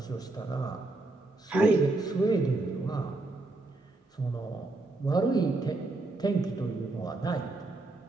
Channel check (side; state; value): left; quieter; 3.0 dB